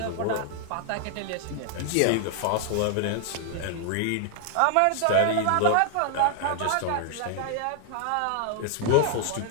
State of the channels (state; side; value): different; both; correlation 0.00